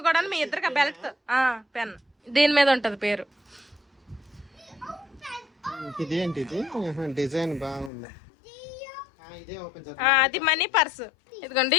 కూడా, మీ ఇద్దరికి బెల్ట్ పెన్ దీని మీద ఉంటది పేరు. ఇదేంటి డిజైన్ బాగుంది. అది మనీ పర్స్. ఇదిగోండి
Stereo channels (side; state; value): right; drops out; at 7.9 s